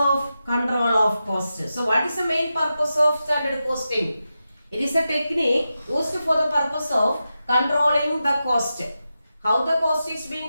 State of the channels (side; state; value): both; inverted; correlation -0.90